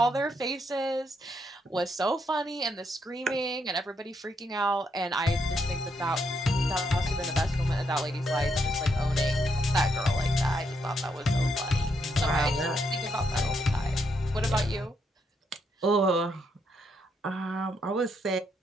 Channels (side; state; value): both; normal; correlation 0.77